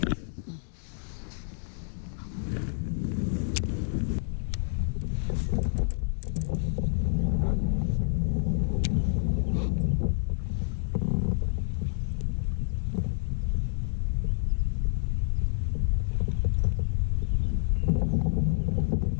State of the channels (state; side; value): silent; right; digital silence